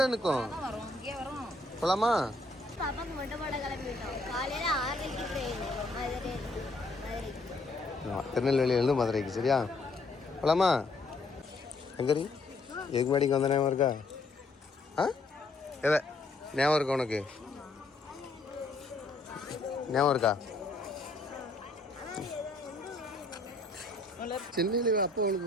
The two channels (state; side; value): quieter; right; 3.1 dB